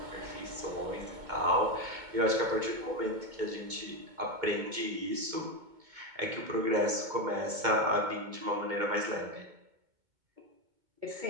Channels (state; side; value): late; left; 2.2 ms